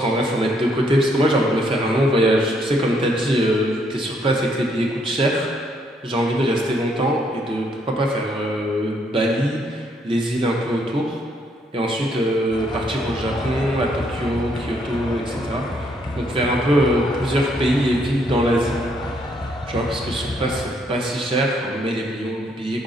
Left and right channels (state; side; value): normal; both; correlation 0.71